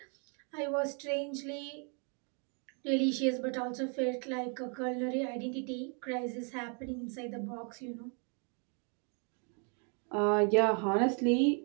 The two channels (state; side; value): quieter; left; 38.9 dB